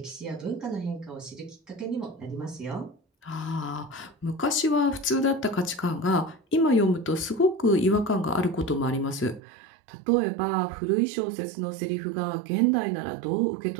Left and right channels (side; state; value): left; drops out; at 9.4 s